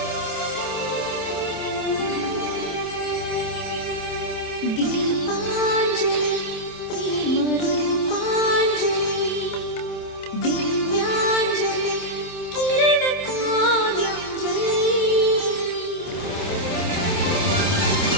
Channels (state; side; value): late; right; 27 ms